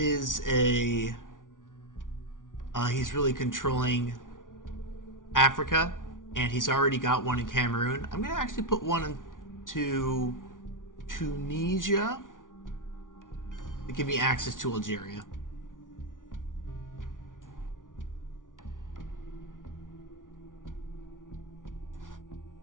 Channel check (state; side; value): late; right; 0.88 ms